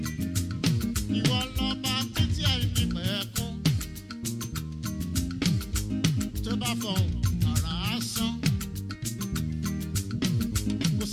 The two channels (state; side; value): identical; both; correlation 1.00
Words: Ìwọ lọ́ba títí àìní pẹ̀kún. Tó bá fọ̀hún àrà á sán. Kò